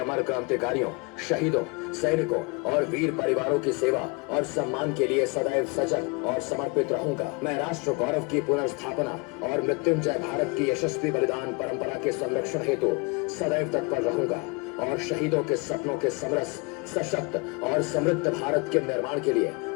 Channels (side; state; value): right; quieter; 29.2 dB